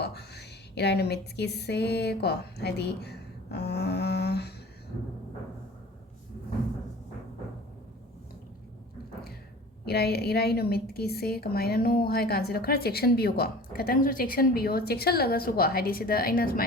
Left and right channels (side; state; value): both; normal; correlation 0.42